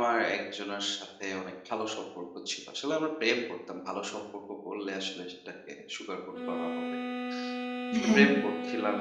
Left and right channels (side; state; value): both; identical; correlation 1.00